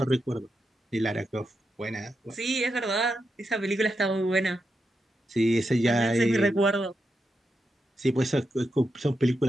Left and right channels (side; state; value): both; normal; correlation 0.86